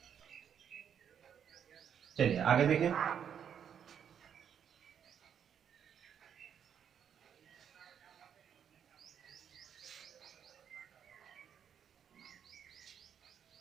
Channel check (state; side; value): quieter; left; 8.3 dB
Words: चलिए आगे देखें।